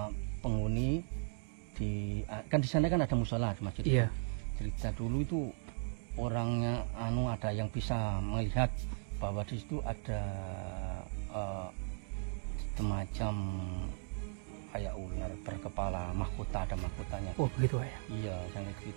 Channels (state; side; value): silent; left; 53 dB below the other